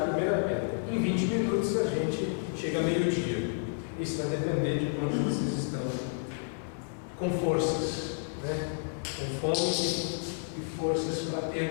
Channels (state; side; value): silent; right; 57 dB below the other